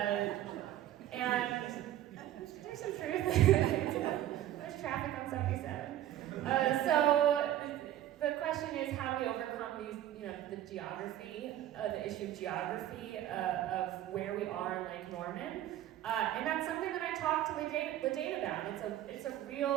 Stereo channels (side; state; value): left; quieter; 12.7 dB